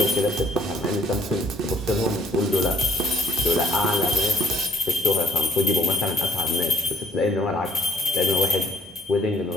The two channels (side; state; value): both; normal; correlation 0.62